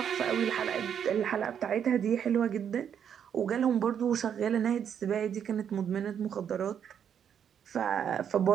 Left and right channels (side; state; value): left; quieter; 8.4 dB